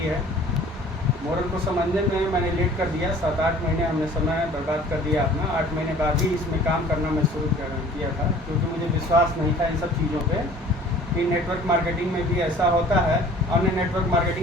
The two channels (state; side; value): normal; both; correlation 0.49